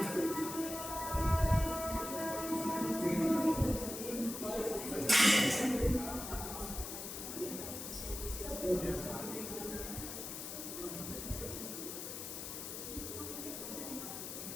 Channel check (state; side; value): noise; left; hiss, 7 dB below the sound